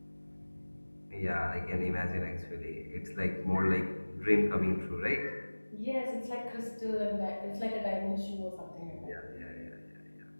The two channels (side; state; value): both; inverted; correlation -1.00